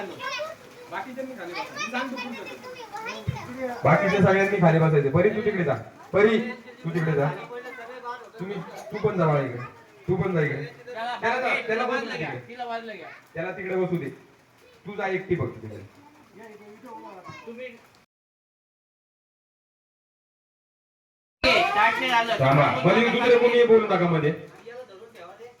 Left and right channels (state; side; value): identical; both; correlation 1.00